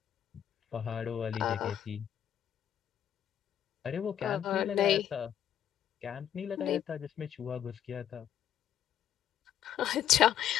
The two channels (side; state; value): right; quieter; 10.2 dB